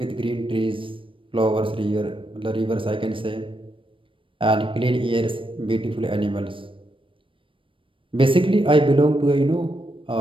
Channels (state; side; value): late; left; 0.25 ms